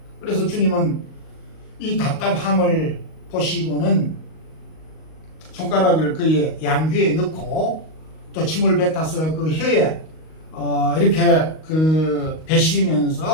그래서 주님은 이 답답함을 보시고는 손가락을 그의 양귀에 넣고 또 침을 뱉어서 그 혀에 이렇게 그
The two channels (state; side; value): late; right; 38 ms